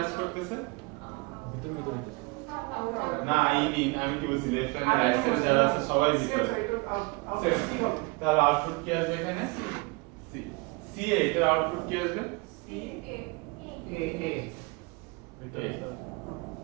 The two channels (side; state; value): left; quieter; 27.6 dB